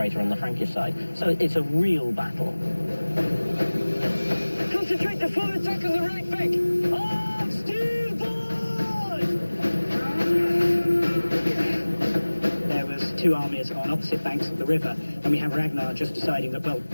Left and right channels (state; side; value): inverted; both; correlation -1.00